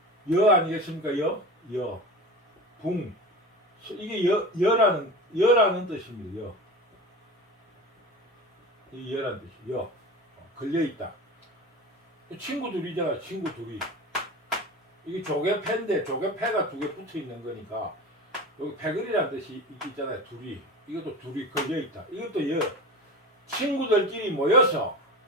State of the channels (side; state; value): both; normal; correlation 0.31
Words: 여 아니겠습니까? 붕 이게 여라는 뜻입니다. 이 여라는 뜻이 걸려있다. 친구 둘이잖아. 친구 둘이 이게 조개패인데 조개패가 두 개 붙어 있는 거니까 여기 패거리라는 뜻이 있잖아요. 둘이 이것도 둘이 걸려있다. 이것도 친구들끼리